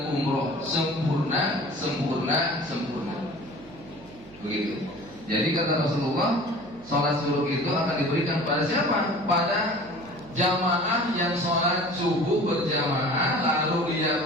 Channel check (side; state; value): right; noise; hum, 21 dB below the sound